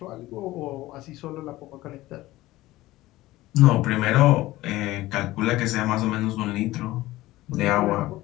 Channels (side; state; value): right; quieter; 17.4 dB